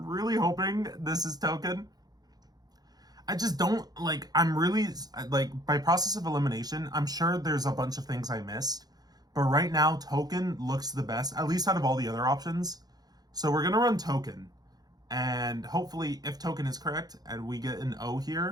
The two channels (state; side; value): late; left; 0.19 ms